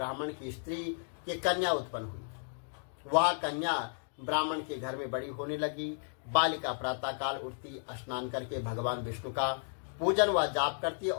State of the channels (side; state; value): right; silent; digital silence